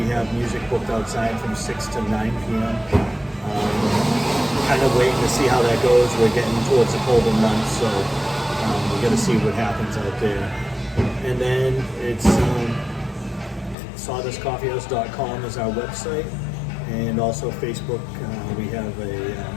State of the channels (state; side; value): drops out; right; at 13.8 s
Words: have music booked outside from 6 to 9 p.m. Kind of waiting to see how that goes. We're getting towards the colder months, so we got to see what happens out there. And then it's sawdustcoffeehouse.com is our website, and also Facebook. We have